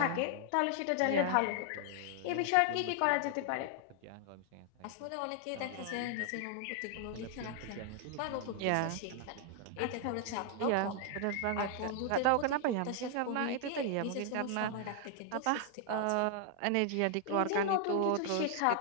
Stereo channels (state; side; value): different; both; correlation 0.00